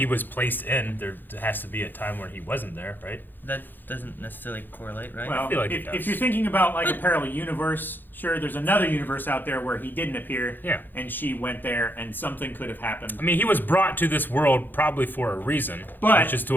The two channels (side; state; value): right; late; 0.091 ms